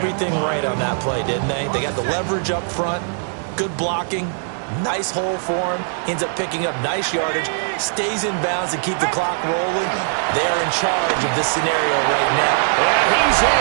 right on that play, didn't they? They got the leverage up front, good blocking, nice hole for him, ends up picking up nice yardage, stays in bounds to keep the clock rolling. They're in charge of this scenario right now. And he's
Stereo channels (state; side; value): silent; left; digital silence